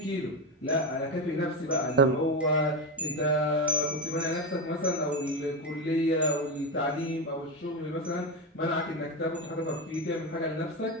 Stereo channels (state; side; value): normal; both; correlation 0.15